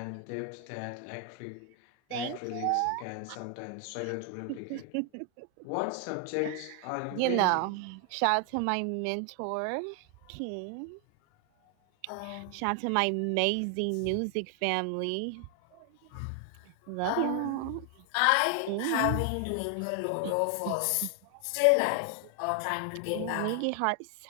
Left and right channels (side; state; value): both; different; correlation 0.00